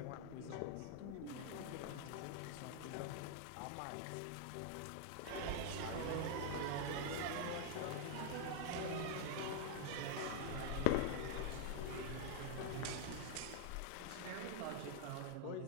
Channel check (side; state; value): both; different; correlation 0.00